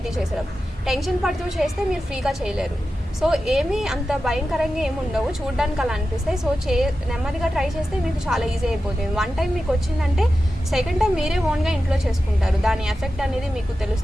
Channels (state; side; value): normal; both; correlation 0.92